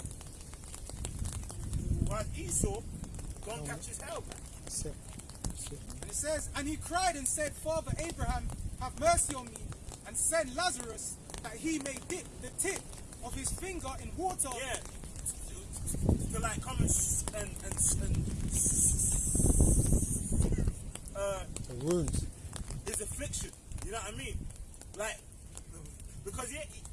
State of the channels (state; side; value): identical; both; correlation 1.00